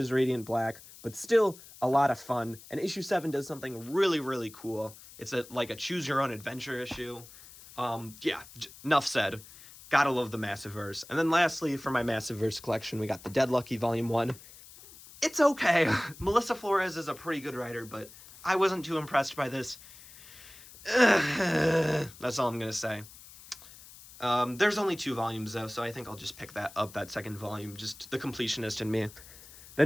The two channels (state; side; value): noise; left; hiss, 19 dB below the sound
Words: Radiant Black, but still a lot of fun. And issue 7 does something really, really cool. It's a choose your own adventure issue. Enough said. Gotta love the Massiverse. And then lastly, for my Massiverse collection, we got the Dead Lucky volume 1. It's okay. Melissa Flores is a pretty good writer, but I wasn't too impressed by this. That's all I'm gonna say. There's only 2 volumes though, so I think I'll just pick that second volume, just the completionist in me.